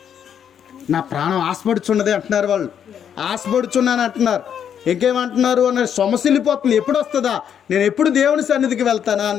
నా ప్రాణం ఆశపడుచున్నది అంటున్నారు. వాళ్ళు ఆశపడుచున్నాను అంటున్నారు. ఇంకేమంటున్నారు అన్న సొమసిల్లిపోతుంది. ఎప్పుడు వస్తుందా, నేను ఎప్పుడు దేవుని సన్నిధికి వెళ్తానా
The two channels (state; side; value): quieter; right; 8.6 dB